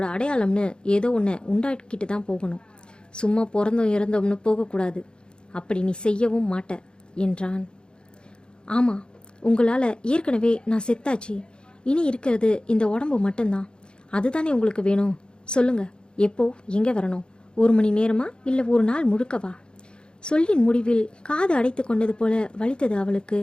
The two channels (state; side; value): late; right; 0.051 ms